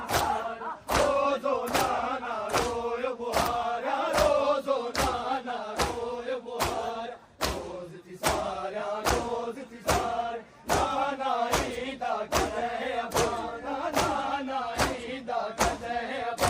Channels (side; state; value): both; identical; correlation 1.00